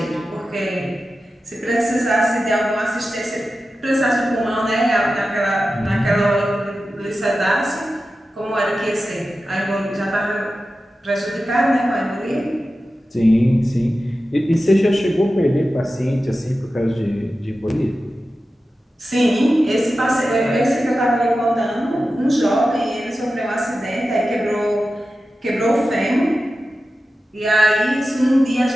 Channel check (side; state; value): both; normal; correlation 0.93